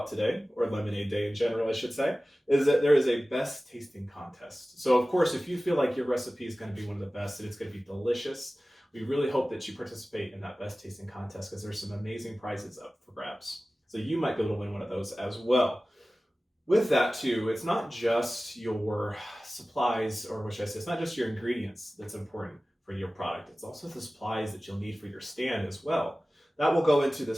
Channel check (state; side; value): normal; both; correlation 0.97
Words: today, or Lemonade Day in general, I should say, is that there is a best tasting contest. So of course, if you feel like your recipe is going to be one of the best and it's going to be delicious, we really hope that you participate in that best tasting contest because there's some amazing prizes up for grabs. So you might be able to win one of those as well. With that too, it's not just your supplies, or what should I say, it's not just your ingredients that's important for your product. It's also the supplies that you'll need for your stand as well. That will go into